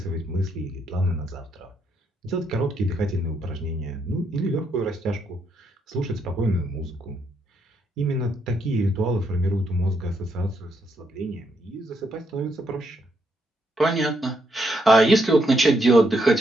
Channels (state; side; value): normal; both; correlation 0.76